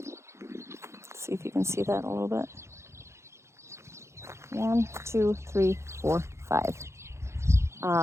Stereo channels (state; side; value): late; left; 0.13 ms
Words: See if you can see that a little bit. 1, 2, 3, 4, 5.